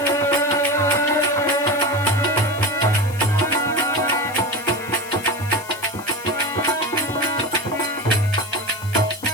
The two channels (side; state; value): left; noise; hiss, 17 dB below the sound